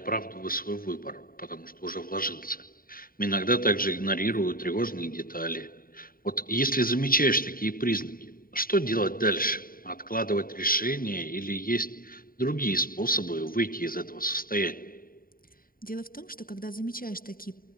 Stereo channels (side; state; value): right; late; 0.42 ms